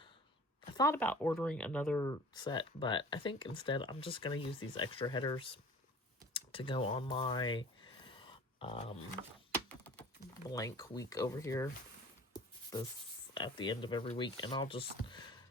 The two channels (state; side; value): normal; both; correlation 0.45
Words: thought about ordering another set, but I think instead I'm just going to use these extra headers to go on my blank week over here. This at the end of every week, and I'll just